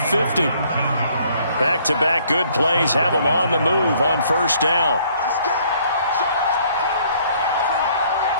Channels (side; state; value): both; inverted; correlation -0.62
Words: 50. Back-to-back good plays have him on the move on 1st down.